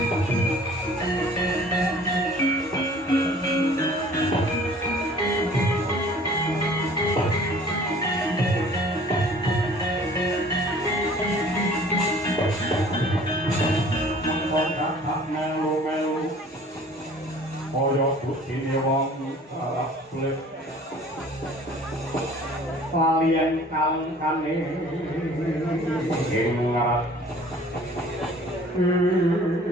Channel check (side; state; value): both; normal; correlation 0.50